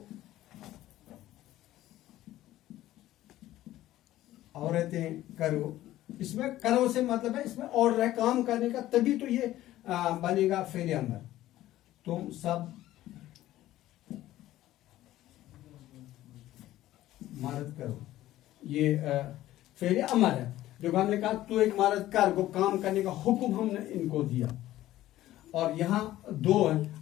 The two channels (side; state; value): right; quieter; 14.7 dB